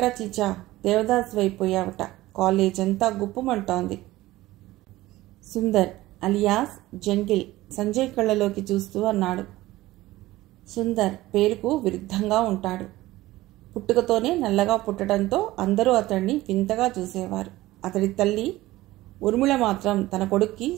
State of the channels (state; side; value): quieter; left; 17.4 dB